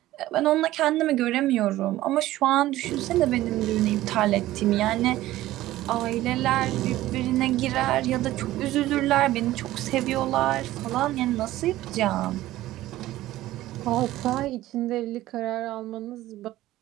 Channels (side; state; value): left; quieter; 15.6 dB